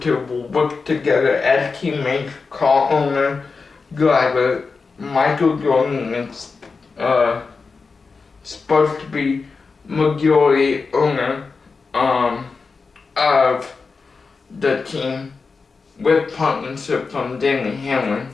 will work together as teammates. Car owner, driver, Michael Jordan is supposed to be majority owner of the team with partnership from Danny Hamlin.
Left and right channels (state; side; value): quieter; right; 4.6 dB